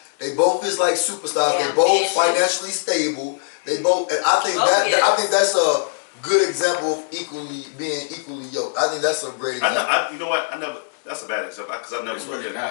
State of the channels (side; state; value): right; silent; digital silence